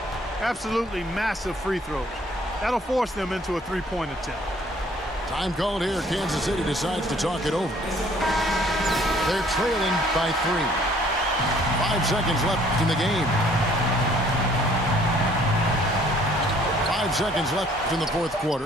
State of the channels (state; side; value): normal; both; correlation 0.59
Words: Absolutely massive free throws. That'll force them into a three-point attempt. Time called here. Kansas City decides to talk it over. They're trailing by 3. 5 seconds left in the game. 5 seconds left in the fourth